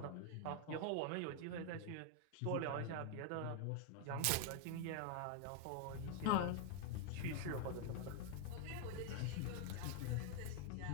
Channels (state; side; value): different; both; correlation 0.00